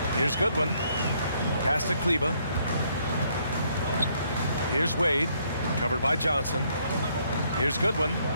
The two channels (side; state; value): both; inverted; correlation -0.69